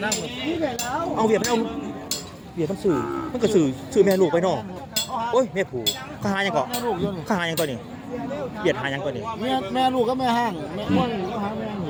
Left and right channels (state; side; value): identical; both; correlation 1.00